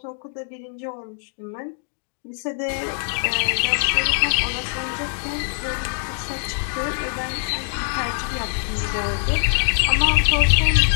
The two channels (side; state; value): right; silent; digital silence